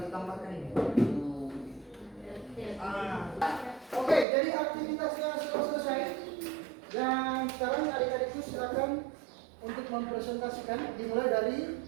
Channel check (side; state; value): left; drops out; at 4.2 s